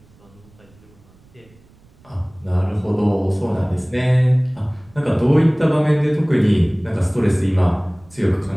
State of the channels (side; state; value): right; noise; rumble, 29 dB below the sound